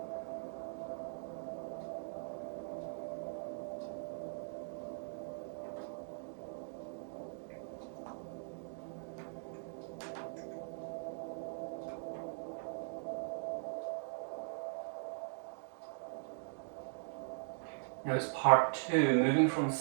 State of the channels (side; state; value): left; silent; digital silence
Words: Now it's part 2, moving from